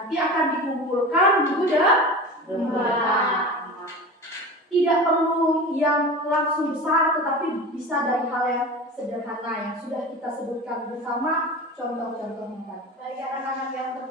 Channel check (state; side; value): normal; both; correlation 0.32